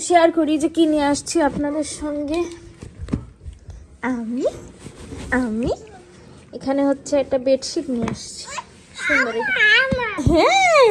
শেয়ার করি যে কি নিয়ে আসছি আপনাদের সঙ্গে। আমি আমি এখানে হচ্ছে একটা বেডশিট নিয়ে আসছি, সুন্দর।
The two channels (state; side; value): identical; both; correlation 1.00